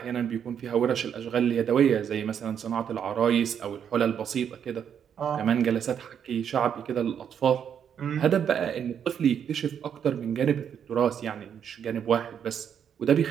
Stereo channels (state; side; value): quieter; left; 8.3 dB